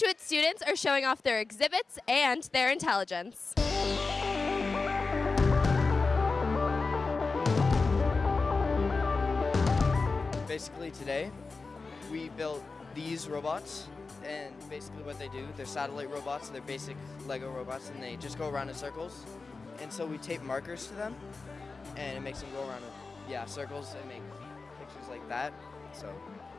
students are showing off their exhibits and their intelligence. Basically today, we built these robots, and basically what they do, they're satellite robots, they're basic Lego robots, and they just go around in circles. And so we tape markers to them, and it makes them go around in circles and make pictures like that. So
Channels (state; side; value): quieter; right; 4.1 dB